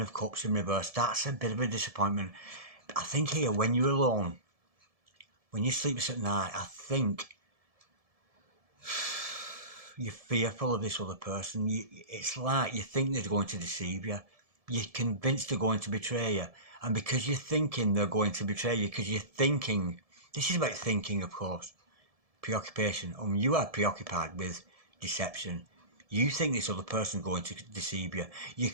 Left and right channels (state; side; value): late; left; 1.7 ms